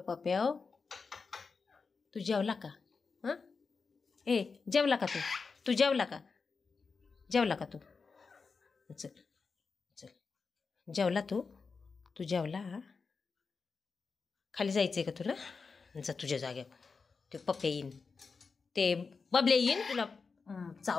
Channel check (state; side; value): quieter; right; 4.8 dB